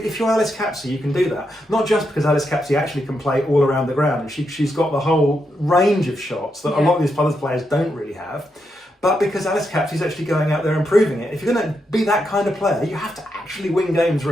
you're Alice Capsey, you can do that. Not just because Alice Capsey actually can play all around the ground, and she's got the whole range of shots that a lot of these other players don't really have, but because Alice Capsey's actually going out there and proving it. If you're going to be that kind of player, you have to actually win games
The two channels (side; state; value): both; normal; correlation 0.83